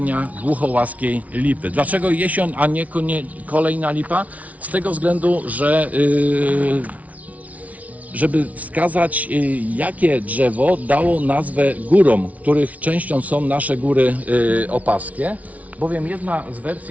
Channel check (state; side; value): late; left; 0.069 ms